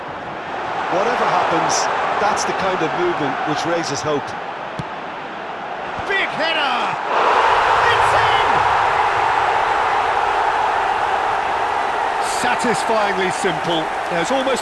happens, that's the kind of movement which raises hope. Big header! It's in! Satisfyingly simple. There's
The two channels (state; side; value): identical; both; correlation 1.00